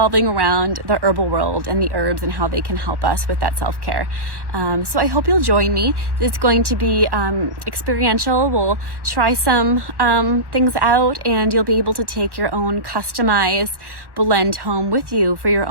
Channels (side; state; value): left; late; 1.1 ms